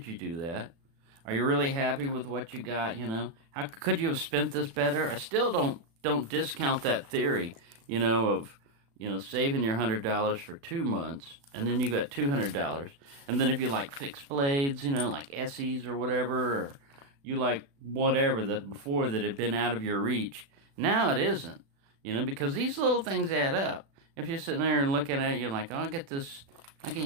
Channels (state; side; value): late; left; 36 ms